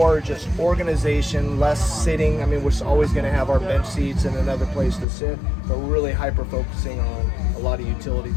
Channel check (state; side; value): drops out; right; at 5.1 s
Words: just organization, less sitting. I mean, we're always gonna have our bench seats and another place to sit, but we're really hyper focusing on a lot of utility